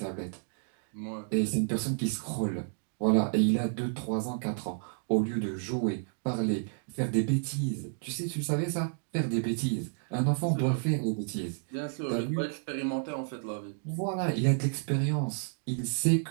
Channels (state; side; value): silent; left; digital silence